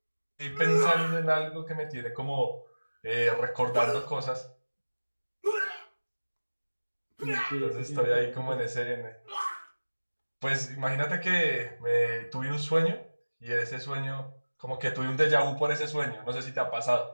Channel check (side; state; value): both; inverted; correlation -1.00